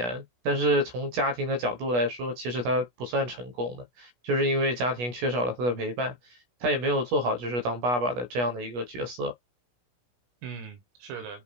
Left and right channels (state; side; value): late; left; 16 ms